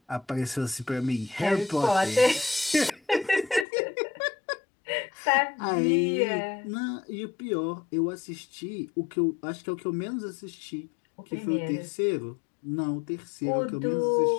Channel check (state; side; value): drops out; right; at 3.7 s